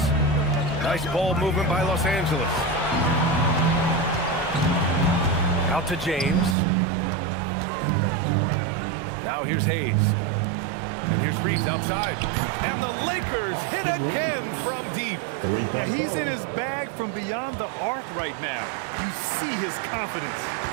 Nice ball movement by Los Angeles. Out to James. Now here's Hayes. And here's Reeves outside. And the Lakers hit again from deep. Yeah, he's in his bag from beyond the arc right now. You see his confidence.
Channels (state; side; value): drops out; left; at 6.6 s